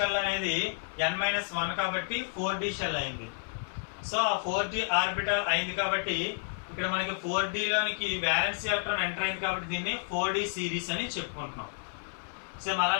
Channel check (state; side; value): silent; right; digital silence